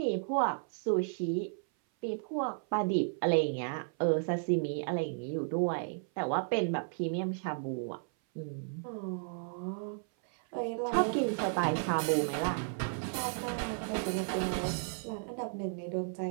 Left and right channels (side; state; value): left; silent; 55 dB below the other